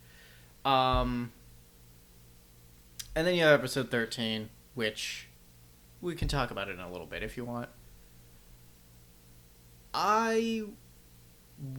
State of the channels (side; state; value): both; identical; correlation 1.00